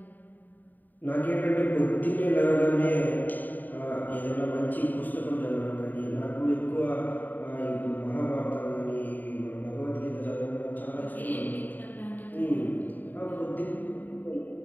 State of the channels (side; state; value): right; late; 0.087 ms